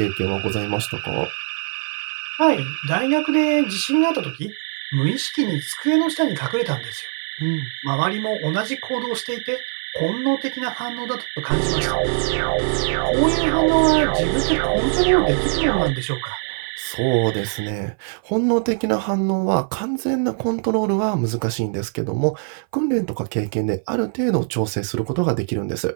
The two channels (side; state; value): left; silent; 58 dB below the other